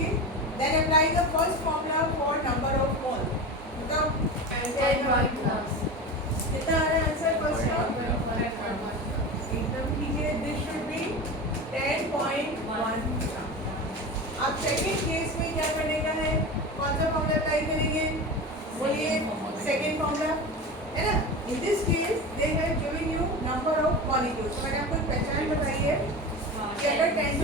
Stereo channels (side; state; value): both; normal; correlation 0.27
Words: then apply the first formula for number of mole. बताओ कितना आ रहा है आंसर फर्स्ट का? एकदम कीजिए. This should be 10.1. अब सेकंड केस में क्या करने का है? कौन सा फॉर्मूला अप्लाई करेंगे? बोलिए. सेकंड फॉर्मूला है ना. इन this case they have given you number of molecules. तो मैंने आपको एक पहचान बताई है कि अगर